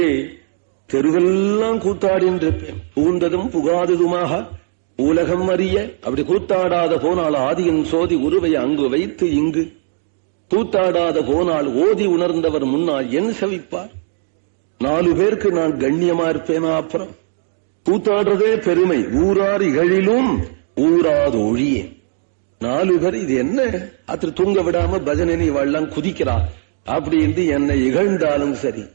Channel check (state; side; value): silent; left; digital silence